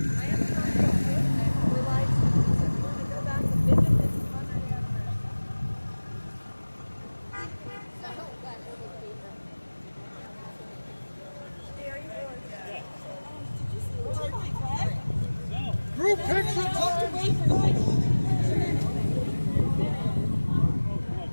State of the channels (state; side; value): inverted; both; correlation -1.00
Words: Group picture time.